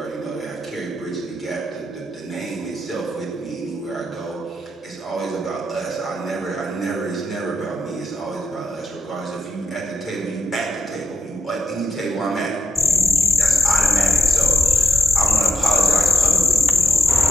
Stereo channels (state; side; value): normal; both; correlation 0.85